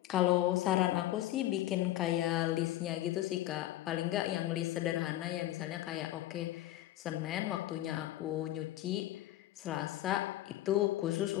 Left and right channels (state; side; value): quieter; right; 14.8 dB